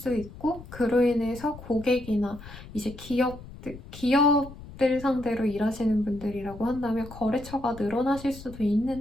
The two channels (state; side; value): noise; left; rumble, 15 dB below the sound